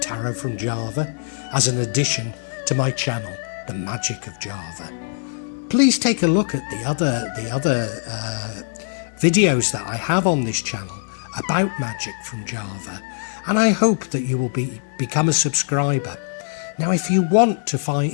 from Java as an addition to my channel, The Magic of Java. Please take a look at the other videos that I have on this channel about magic from Java, and I hope that you will become a subscriber. Now, if you want to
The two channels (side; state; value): right; silent; digital silence